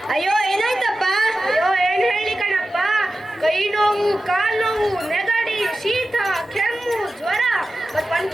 ಅಯ್ಯೋ ಏನಾಯ್ತಪ್ಪ? ಅಯ್ಯೋ ಏನ್ ಹೇಳಿ ಕಣಪ್ಪ, ಕೈ ನೋವು, ಕಾಲ್ ನೋವು, ನೆಗಡಿ, ಶೀತ, ಕೆಮ್ಮು, ಜ್ವರ, ಮತ್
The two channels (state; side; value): normal; both; correlation 0.94